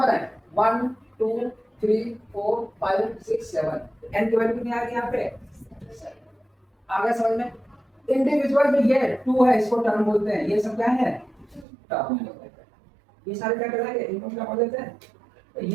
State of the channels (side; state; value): left; drops out; at 11.7 s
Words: है, 1 2 3 4 5 6 7, n की वैल्यू कितनी आ गई यहाँ पे, आ गया समझ में। इंडिविजुअल में ये 2 है, इसको टर्म बोलते हैं, ये सब क्या है टर्म बोलते हैं। ये सारे क्या कहलाते हैं, इनको क्या बोल देते हैं, तो